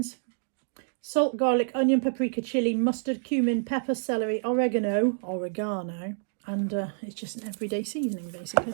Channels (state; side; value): silent; left; digital silence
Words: salt, garlic, onion, paprika, chilli, mustard, cumin, pepper, celery, oregano, and it's just an everyday seasoning basically.